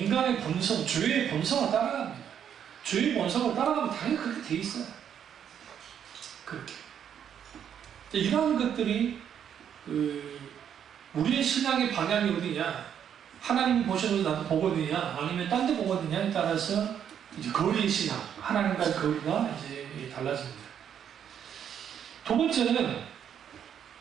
본성, 죄의 본성을 따라갑니다. 죄의 본성을 따라가면 당연히 그렇게 돼 있어요. 그렇게. 이러한 것들이 우리의 신앙의 방향이 어디냐? 하나님이 보셔도 나도 보거든요. 아니면 딴 데 보거든요에 따라서 이제 거리의 신앙, 하나님과의 거리가 이제 달라집니다. 두 번째는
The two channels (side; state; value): left; quieter; 8.8 dB